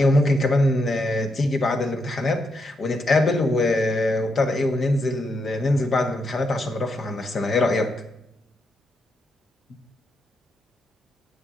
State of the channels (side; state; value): both; normal; correlation 0.81